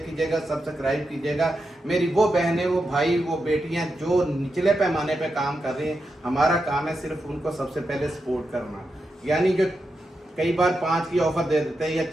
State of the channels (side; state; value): both; normal; correlation 0.87